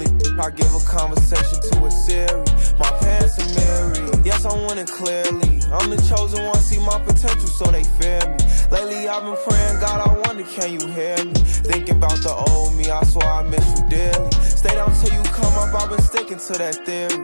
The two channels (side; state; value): both; inverted; correlation -1.00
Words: I give a conversation to a Siri. My pants are married. Yes, I'm winning clearly. I'm the chosen one, see my potential, so they fear me. Lately, I've been praying, God, I wonder, can you hear me? Thinking about the old me, I swear I miss you dearly. Stay down till you come up, I've been sticking to that theory.